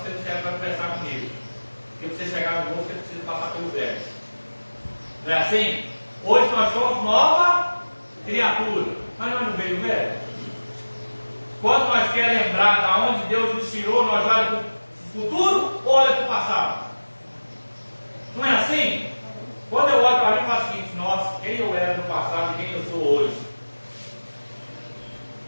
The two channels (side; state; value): both; inverted; correlation -1.00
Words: não serve para conversar comigo. Porque para você chegar no Novo, você precisa passar pelo Velho. Não é assim? Hoje nós somos nova criatura. Mas nós não veio o Velho. Quando nós queremos lembrar de onde Deus nos tirou, nós olhamos para o futuro ou olhamos para o passado? Não é assim? Quando eu olho para mim, eu faço o seguinte, nossa, quem eu era no passado e quem eu sou hoje?